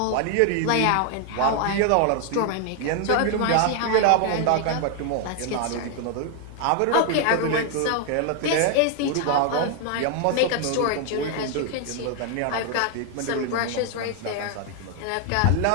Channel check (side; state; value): both; different; correlation 0.01